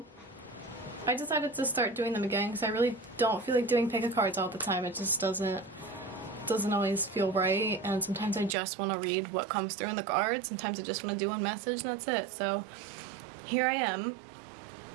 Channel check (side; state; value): left; drops out; at 8.6 s